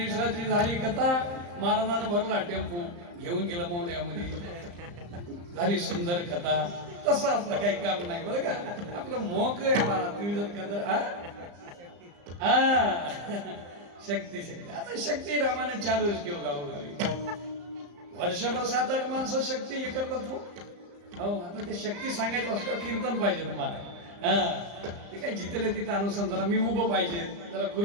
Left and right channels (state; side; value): late; left; 34 ms